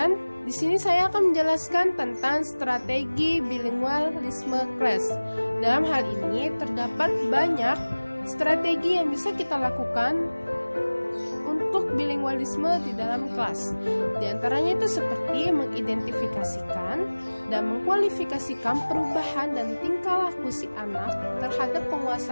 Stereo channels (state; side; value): inverted; both; correlation -1.00